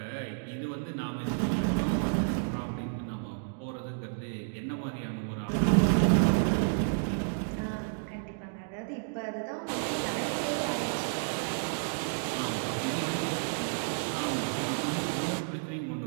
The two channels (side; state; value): left; silent; digital silence